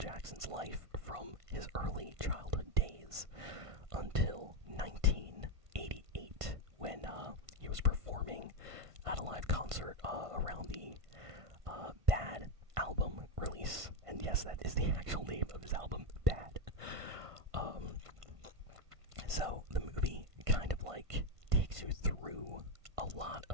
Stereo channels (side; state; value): left; late; 1.5 ms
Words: life from his early childhood days until 1988 when he was performing at a live concert around the Bad album release. And yes, that is the actual name of his album, Bad. So the movie kind of like takes you through a lot